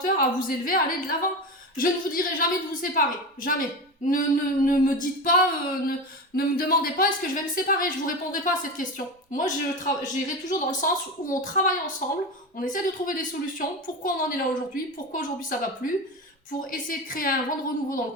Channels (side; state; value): both; normal; correlation 0.23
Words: à vous élever, à aller de l'avant. Je ne vous dirai jamais de vous séparer, jamais. Ne me dites pas, ne me demandez pas est-ce que je vais me séparer, je vous répondrai pas à cette question. Moi, j'irai toujours dans le sens où on travaille ensemble, on essaie de trouver des solutions, pourquoi on en est là aujourd'hui, pourquoi aujourd'hui ça va plus, pour essayer de créer un vent de renouveau dans